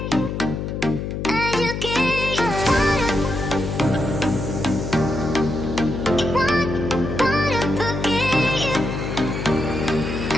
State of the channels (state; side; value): noise; left; hum, 4 dB below the sound